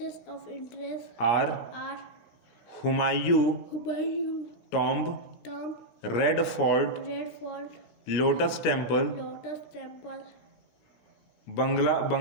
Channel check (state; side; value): late; right; 17 ms